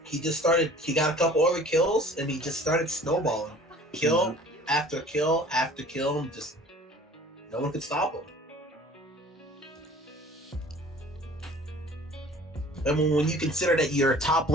He just started. He got a couple other kills, and he just started snowballing. Kill after kill after kill. Just no one could stop him. And when you consider that your top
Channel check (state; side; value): normal; both; correlation 0.48